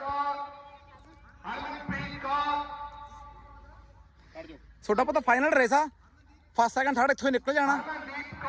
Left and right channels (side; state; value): both; identical; correlation 1.00